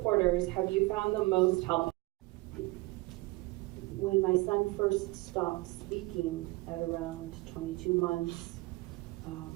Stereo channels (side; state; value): left; quieter; 22.4 dB